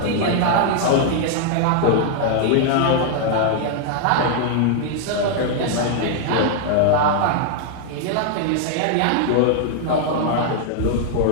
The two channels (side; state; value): both; different; correlation 0.00